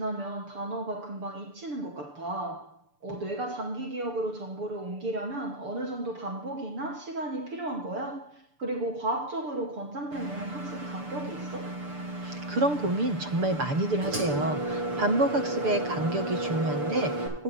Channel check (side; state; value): left; late; 6.8 ms